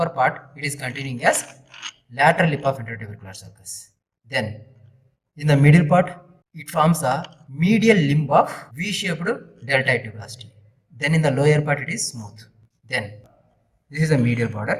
part, it is continuing as lateral lip of intertubercular sulcus. Then in the middle part, it forms a medial limb of V-shaped deltoid tuberosity. Then in the lower part, it is smooth. Then this is the medial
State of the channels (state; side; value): identical; both; correlation 1.00